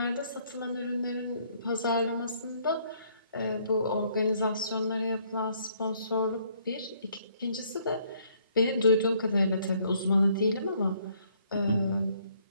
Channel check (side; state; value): both; inverted; correlation -0.66